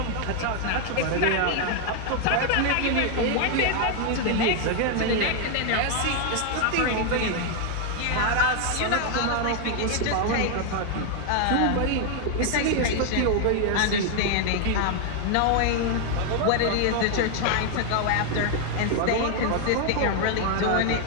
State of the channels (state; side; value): different; both; correlation 0.00